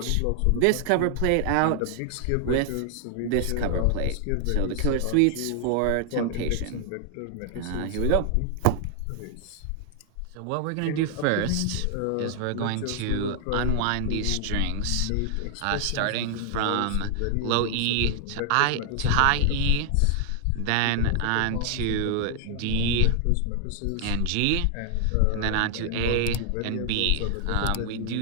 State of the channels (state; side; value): different; both; correlation 0.00